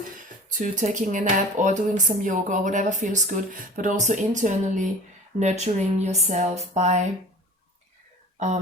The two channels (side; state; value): both; normal; correlation 0.42